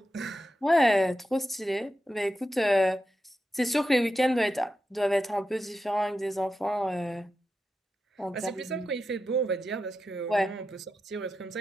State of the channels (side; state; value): both; normal; correlation 0.89